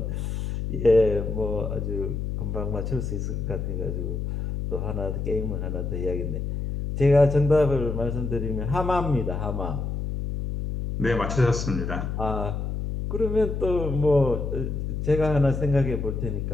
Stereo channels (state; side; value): noise; left; hum, 3 dB below the sound